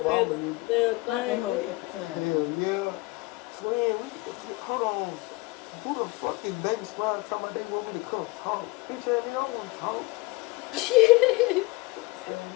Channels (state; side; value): quieter; right; 23.2 dB